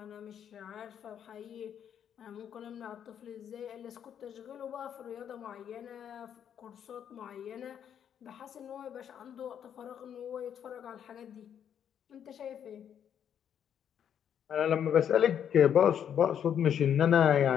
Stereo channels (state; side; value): quieter; right; 8.9 dB